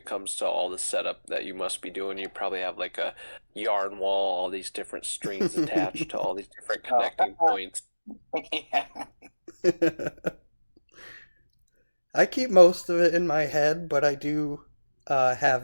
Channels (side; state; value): both; inverted; correlation -1.00